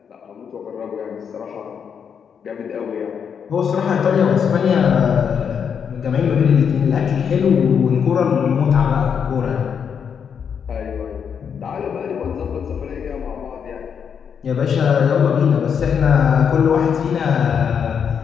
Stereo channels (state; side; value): quieter; right; 7.2 dB